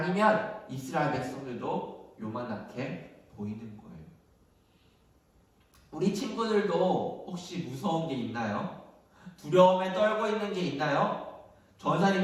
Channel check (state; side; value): identical; both; correlation 1.00